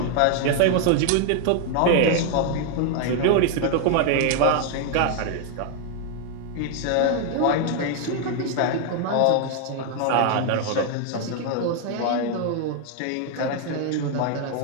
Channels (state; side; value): different; both; correlation 0.00